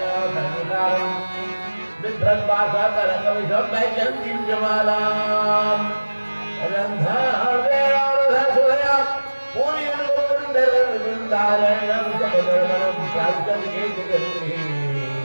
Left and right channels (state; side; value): inverted; both; correlation -1.00